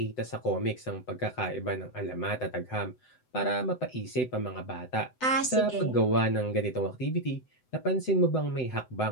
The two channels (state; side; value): late; right; 7.9 ms